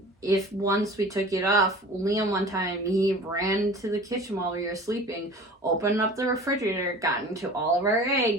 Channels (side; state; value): both; normal; correlation 0.41